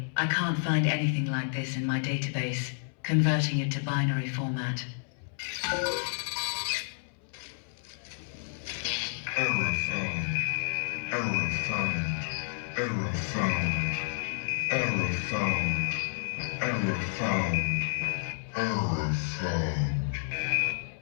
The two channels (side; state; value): right; silent; 58 dB below the other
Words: I can't find anything like this in my database. Converting it to binary format. Error found. Error found. Error found. Error found. Error found. Error found.